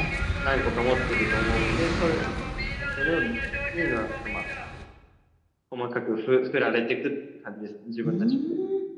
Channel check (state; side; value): identical; both; correlation 1.00